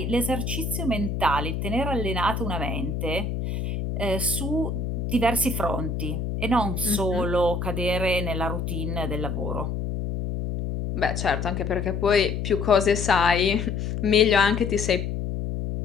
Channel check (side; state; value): left; noise; hum, 3 dB below the sound